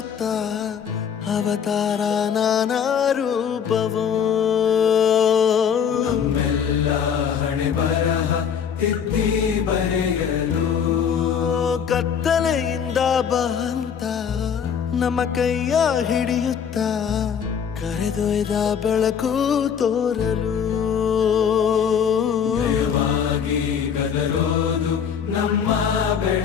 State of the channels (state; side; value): quieter; right; 7.5 dB